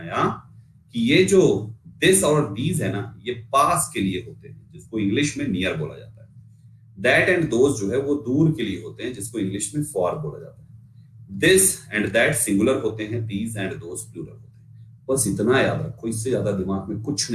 कि ये जो दिस और दीज है ना, ये पास के लिए होते हैं, जिसको इंग्लिश में नियर बोला जाता है। दैट एंड दोज जो है वो दूर के लिए होते हैं, जिसको इंग्लिश में फॉर बोला जाता है। दिस एंड दैट सिंगुलर होते हैं, दीज एंड दोज प्लूरल होते हैं। बस इतना याद रखो, इससे ज्यादा दिमाग में कुछ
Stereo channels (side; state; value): both; identical; correlation 1.00